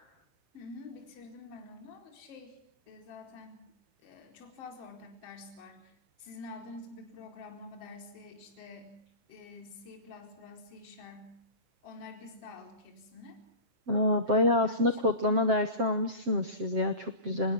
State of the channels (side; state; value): left; late; 7.5 ms